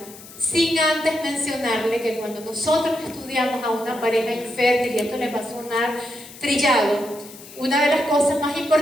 sin antes mencionarle que cuando nosotros estudiamos a una pareja infértil, y esto les va a sonar trillado, una de las cosas más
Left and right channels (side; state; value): left; noise; hiss, 18 dB below the sound